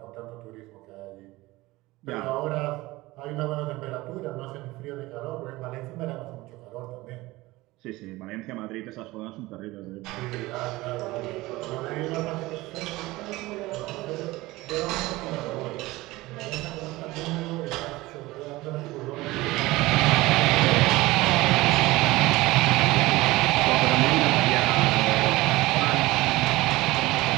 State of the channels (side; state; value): left; quieter; 19.6 dB